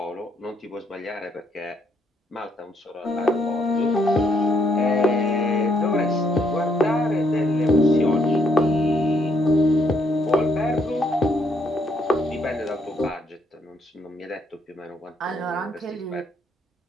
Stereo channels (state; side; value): normal; both; correlation 0.72